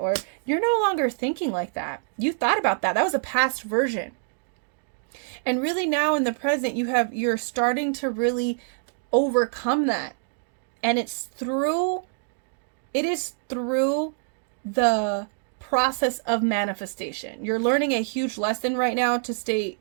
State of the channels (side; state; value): left; silent; digital silence